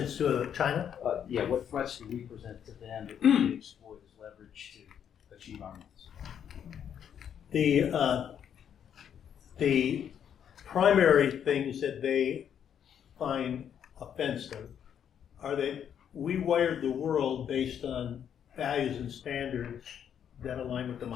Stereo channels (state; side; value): quieter; right; 8.8 dB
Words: to China? yeah, what threats do we present to them that we can exploit as leverage to achieve our needs? The primary things that they find offensive are that we wired the world based on values and standards that align with